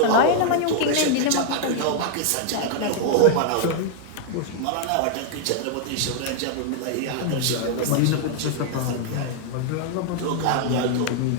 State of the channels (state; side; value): different; both; correlation 0.00